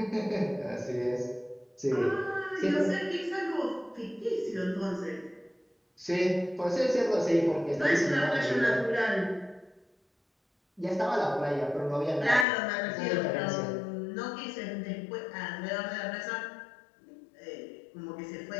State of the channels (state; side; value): drops out; right; at 12.5 s